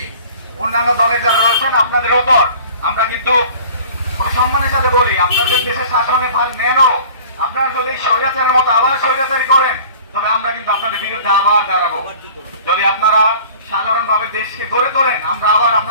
অন্যান্য দলে যারা রয়েছেন আপনাদের ওপর আমরা কিন্তু সম্মানের সাথে বলি, আপনাদের দেশের শাসনে ভার নেনও, আপনারা যদি স্বৈরাচারের মতো আবার স্বৈরাচারী করেন তবে আমরা কিন্তু আপনাদের বিরুদ্ধে আবার দাঁড়াবো। যদি আপনারা সাধারণভাবে দেশকে গড়ে তোলেন আমরা আবার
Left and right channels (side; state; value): both; inverted; correlation -0.45